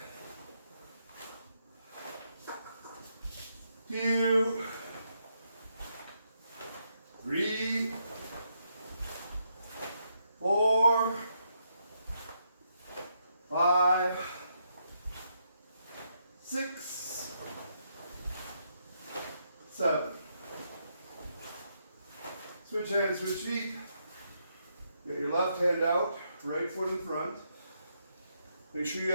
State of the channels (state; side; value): inverted; both; correlation -0.78